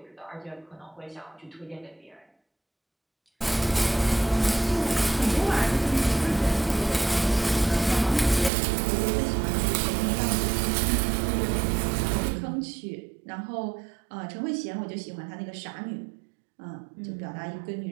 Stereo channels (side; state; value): left; drops out; at 8.5 s